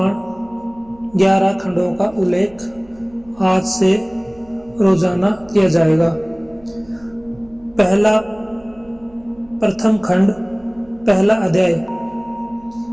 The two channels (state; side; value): noise; right; hum, 28 dB below the sound